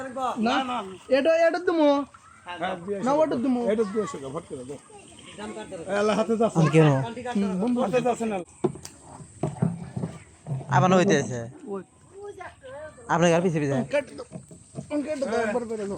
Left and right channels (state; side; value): identical; both; correlation 1.00